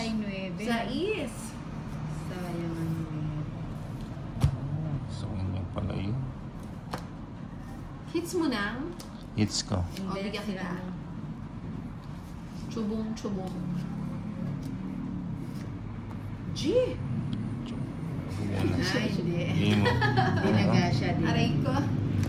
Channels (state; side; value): identical; both; correlation 1.00